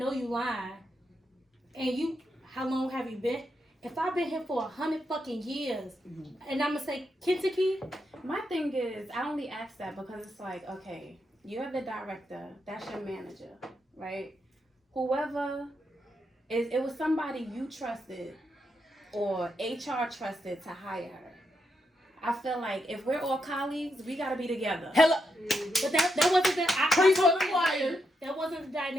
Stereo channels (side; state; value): both; normal; correlation 0.82